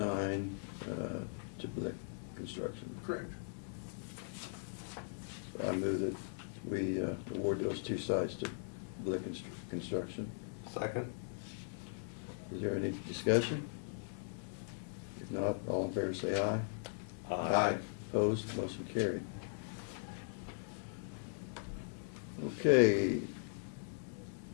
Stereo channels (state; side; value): silent; right; digital silence